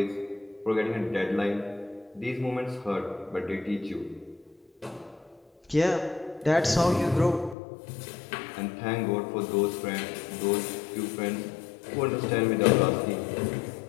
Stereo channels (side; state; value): right; drops out; at 7.6 s